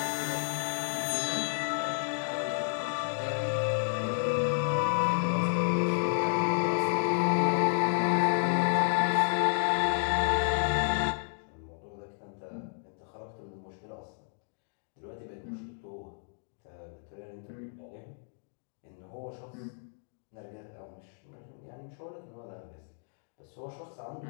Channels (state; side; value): silent; right; digital silence